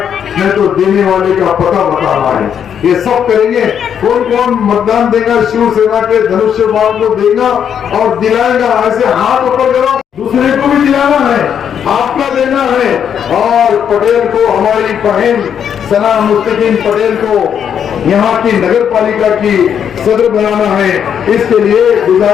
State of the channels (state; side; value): quieter; right; 8.4 dB